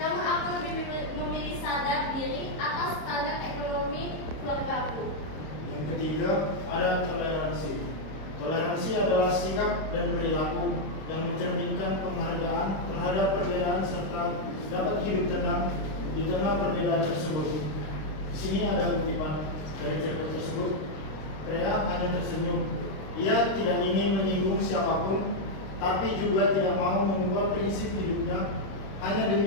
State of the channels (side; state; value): right; late; 26 ms